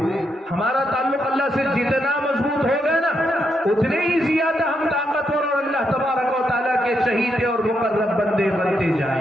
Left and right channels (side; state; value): both; normal; correlation 0.80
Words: ہمارا تعلق اللہ سے جتنا مضبوط ہوگا نا، اتنے ہی زیادہ ہم طاقتور اور اللہ تبارک و تعالیٰ کے چہیتے اور مقرب بندے بنتے